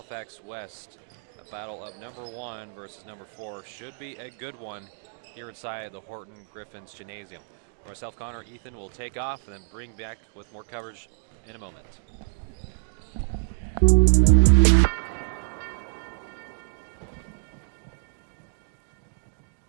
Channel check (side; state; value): left; silent; digital silence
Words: West. A battle of number 1 versus number 4. Should be a good one here inside the Horton Griffins Gymnasium. For myself, Connor, Ethan will take off and then bring back with more coverage in a moment.